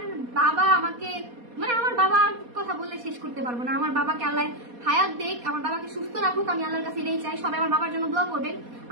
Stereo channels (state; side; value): late; left; 4.2 ms